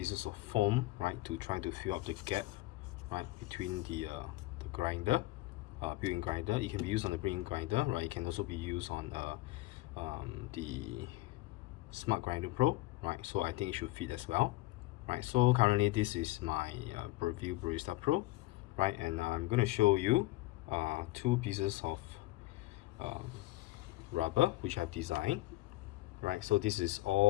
of foam, right, to try to fill up the gap, right, between the grinder, brewing grinder. It can be used on the brewing grinder, right? It can also be used on the Smart Grinder Pro, right? So I think it should fit as well, right? So currently this is my Breville Barista Pro, right? And I'm going to show you two pieces of rubber which I've designed, right? So this is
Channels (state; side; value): quieter; right; 18.7 dB